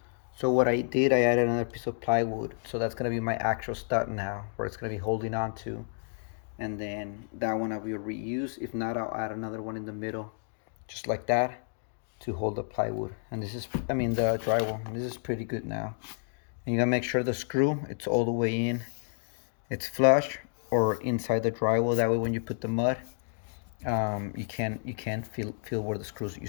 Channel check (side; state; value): right; silent; digital silence